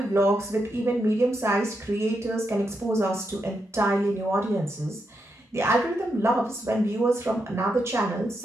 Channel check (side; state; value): both; normal; correlation 0.83